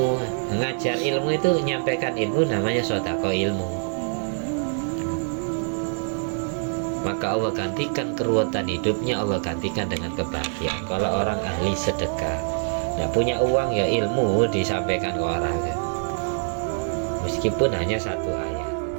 ngajar ilmu itu, menyampaikan ilmu, namanya sodako ilmu. Maka Allah gantikan keruwetan hidupnya, Allah gantikan dengan kebahagiaan. Kalau orang ahli sedekah, tidak punya uang, ya ilmu disampaikan ke orang, meskipun hanya satu ayat.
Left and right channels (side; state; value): left; silent; 62 dB below the other